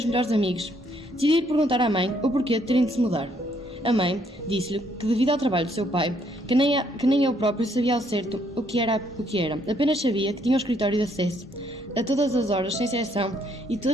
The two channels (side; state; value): both; normal; correlation 0.69